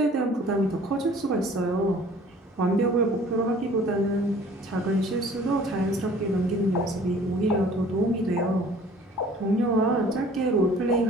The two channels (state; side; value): normal; both; correlation 0.51